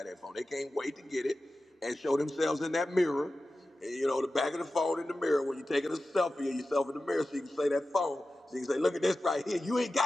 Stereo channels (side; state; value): both; normal; correlation 0.94